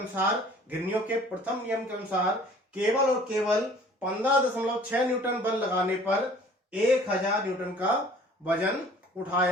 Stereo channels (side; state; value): both; normal; correlation 0.51